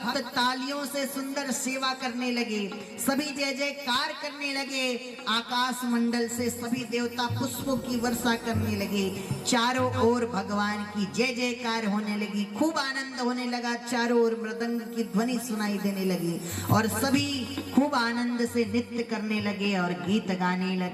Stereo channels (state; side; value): identical; both; correlation 1.00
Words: तालियों से सुंदर सेवा करने लगे, सभी जय जयकार करने लगे। आकाश मंडल से सभी देवता पुष्पों की वर्षा करने लगे। चारों ओर भगवान की जय जयकार होने लगी, खूब आनंद होने लगा। चारों ओर मृदंग की ध्वनि सुनाई देने लगी और सभी खूब आनंद से नृत्य करने लगे और गीत गाने